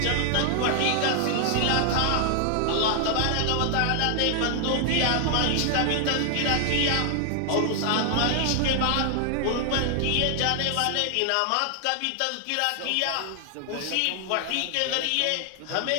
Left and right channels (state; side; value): different; both; correlation 0.00